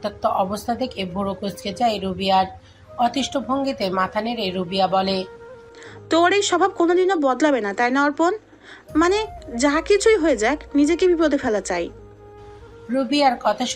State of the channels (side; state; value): both; identical; correlation 1.00